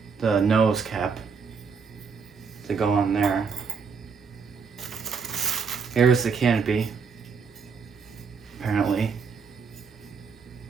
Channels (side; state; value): left; quieter; 5.7 dB